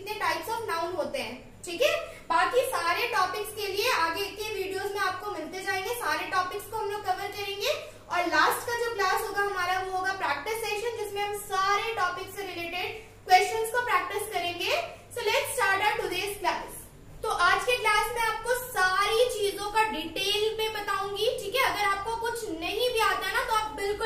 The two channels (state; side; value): identical; both; correlation 1.00